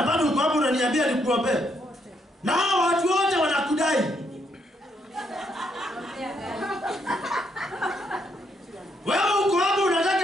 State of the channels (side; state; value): both; normal; correlation 0.75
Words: bado uko hapo unaniambia nikuombee. Na hao watu wote wanakudai. Wewe uko hapo